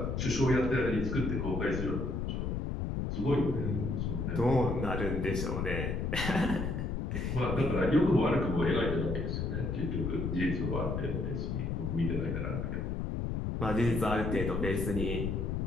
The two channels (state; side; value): noise; left; rumble, 1 dB below the sound